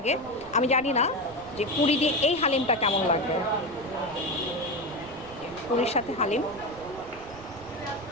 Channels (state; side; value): noise; right; rumble, 19 dB below the sound